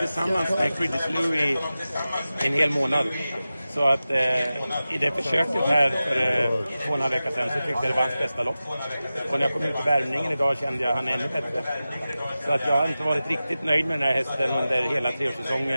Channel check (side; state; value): both; inverted; correlation -0.95